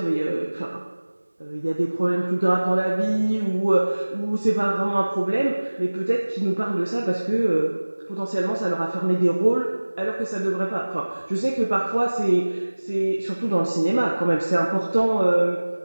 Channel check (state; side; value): inverted; both; correlation -1.00